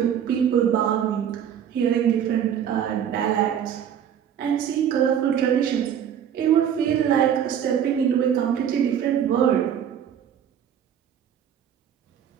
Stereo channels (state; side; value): quieter; left; 9.0 dB